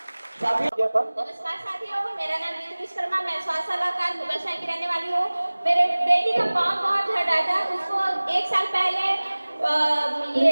नमस्कार साथियों, मेरा नाम नीतू विश्वकर्मा, मैं स्वास्थ्य सलाहकार मुगलसराय की रहने वाली हूँ। मेरे बेटी का पाँव बहुत झड़ रहा था, उसको 1 साल पहले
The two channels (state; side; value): inverted; both; correlation -1.00